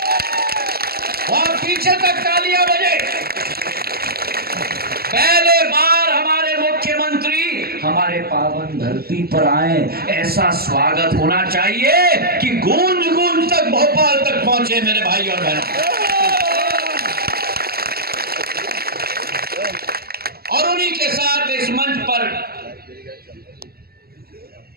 वहां पीछे तक तालियां बजे। पहले बार हमारे मुख्यमंत्री हमारे पावन धरती पर आए, ऐसा स्वागत होना चाहिए कि गूंज गूंज तक भोपाल तक पहुंचे मेरे भाई और बहनों। और उन्हीं के साथ इस मंच पर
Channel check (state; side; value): late; left; 0.45 ms